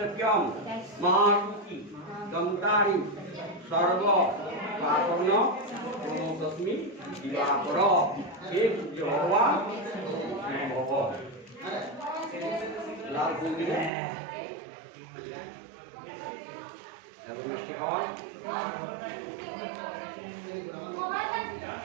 মহারুচি দন্তারি সর্ব পাপন তস্মি দিবাকর হে সূর্য ভগবান ভব লাল ফুল দিলে এবং শেখর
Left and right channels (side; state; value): left; drops out; at 13.9 s